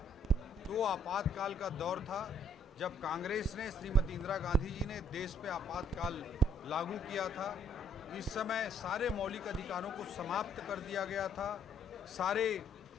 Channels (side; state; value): both; normal; correlation 0.65